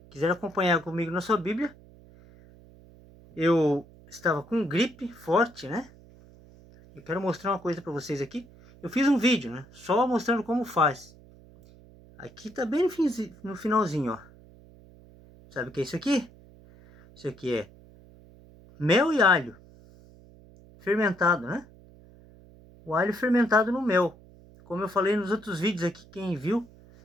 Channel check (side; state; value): right; noise; hum, 23 dB below the sound